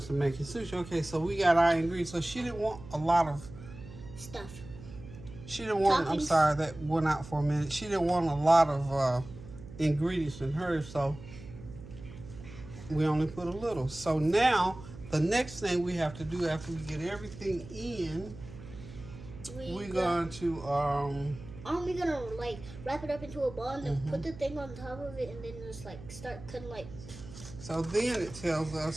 to making sushi. Okay, so we got our ingredients. So she didn't want a lot of stuff. She didn't want. I'm sorry, that went out for a minute. She didn't want a lot of ingredients in hers, so we only put a little. So now the next thing we have to do after we get everything in, we're going to aren't we gonna like wrap it up into a ball and then put the thing on top of it and then just like start cutting like. So then it tells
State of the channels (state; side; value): noise; right; hum, 15 dB below the sound